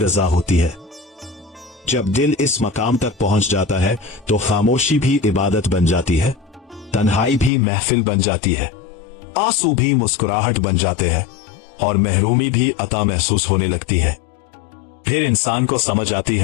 होती है। जब दिल इस मकाम तक पहुंच जाता है तो खामोशी भी इबादत बन जाती है, तन्हाई भी महफिल बन जाती है, आंसू भी मुस्कुराहट बन जाते हैं और महरूमी भी अता महसूस होने लगती है। फिर इंसान को समझ आती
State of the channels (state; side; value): drops out; right; at 7.5 s